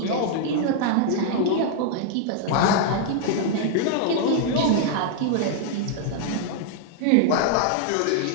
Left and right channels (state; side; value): different; both; correlation -0.01